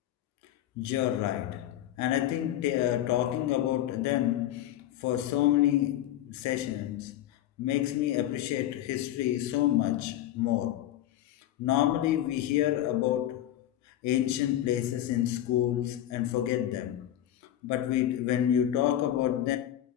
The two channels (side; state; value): right; quieter; 12.5 dB